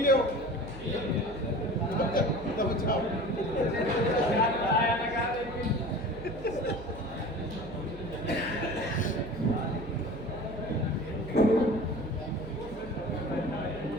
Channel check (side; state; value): right; noise; hum, 15 dB below the sound